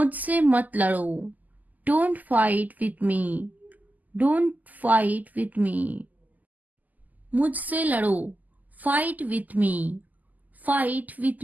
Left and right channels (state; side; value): late; left; 0.081 ms